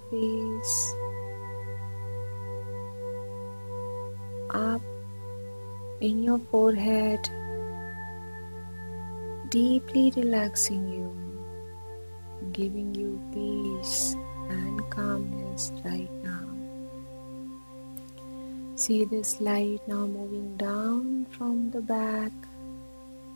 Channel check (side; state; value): both; inverted; correlation -1.00